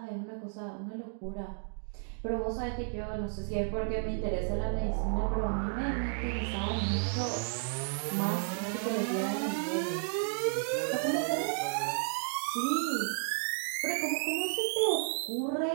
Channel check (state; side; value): silent; left; 56 dB below the other